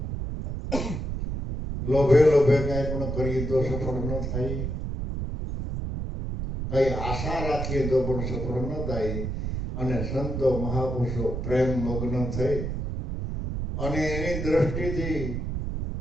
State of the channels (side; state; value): right; noise; rumble, 3 dB below the sound